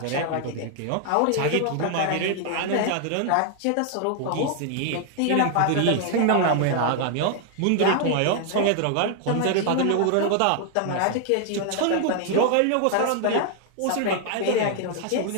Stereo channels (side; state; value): both; different; correlation 0.00